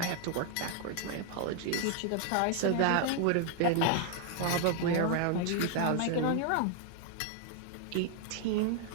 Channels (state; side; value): different; both; correlation 0.00